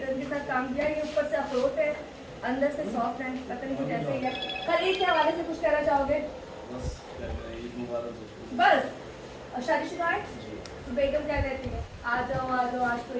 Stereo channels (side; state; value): both; identical; correlation 1.00